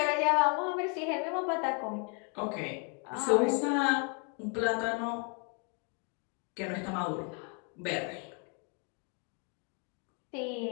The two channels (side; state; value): right; quieter; 36.6 dB